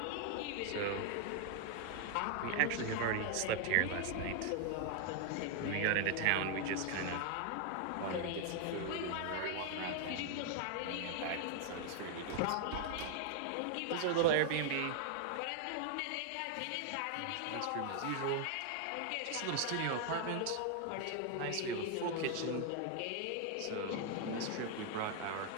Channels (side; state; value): both; different; correlation 0.00